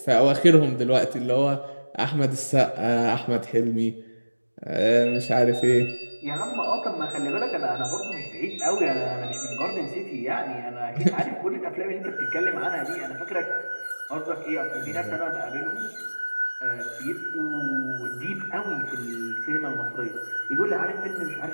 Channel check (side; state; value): both; inverted; correlation -1.00